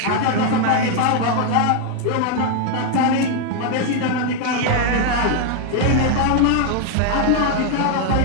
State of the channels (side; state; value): both; different; correlation 0.01